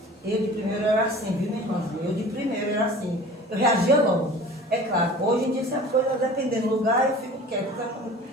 eu de primeiro era assim, viu, minha irmãzinha? Eu de primeiro era assim, eu reagia logo. É claro, hoje em dia, se a coisa dependendo do lugar, eu fico quieto.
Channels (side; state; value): both; normal; correlation 0.43